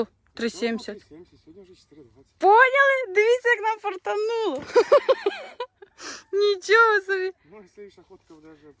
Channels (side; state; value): both; identical; correlation 1.00